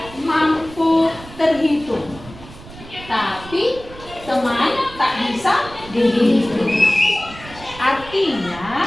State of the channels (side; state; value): right; noise; rumble, 17 dB below the sound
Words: mampu terhitung, tapi teman tak bisa dihitung. Artinya